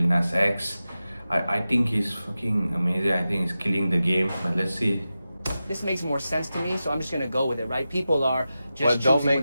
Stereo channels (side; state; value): both; inverted; correlation -0.93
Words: Nas X? I think he's fucking amazing. I think he's killing the game. But let's see. This makes more sense to me, so I'm just gonna go with it, right? People are just What don't choosing make